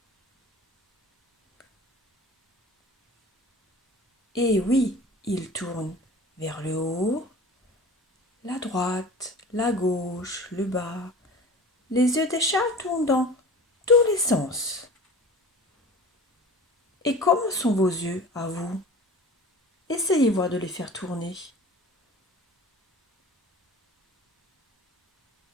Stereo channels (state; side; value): normal; both; correlation 0.40